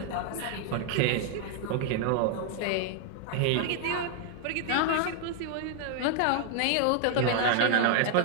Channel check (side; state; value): both; different; correlation 0.00